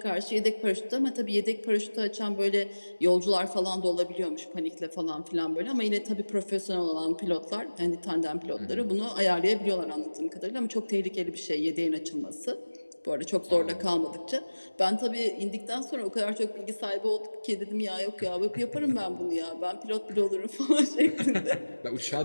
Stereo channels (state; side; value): inverted; both; correlation -1.00